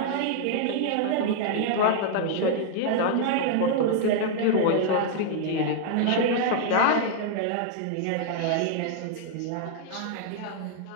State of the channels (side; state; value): both; different; correlation 0.00